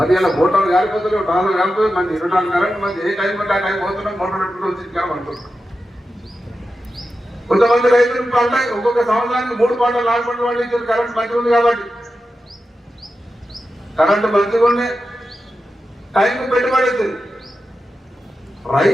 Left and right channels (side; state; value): both; normal; correlation 0.91